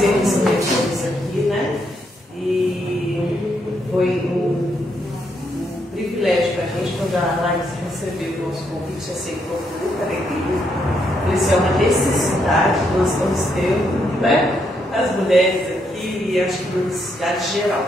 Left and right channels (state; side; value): normal; both; correlation 0.77